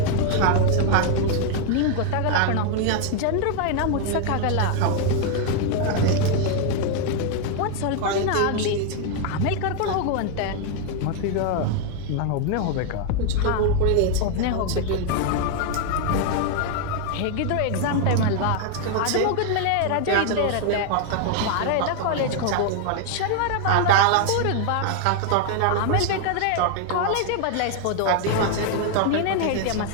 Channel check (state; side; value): different; both; correlation 0.00